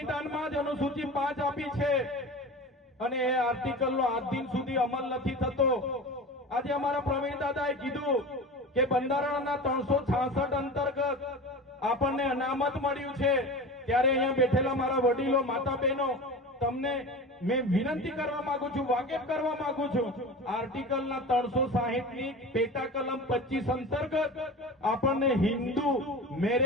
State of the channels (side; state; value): both; normal; correlation 0.32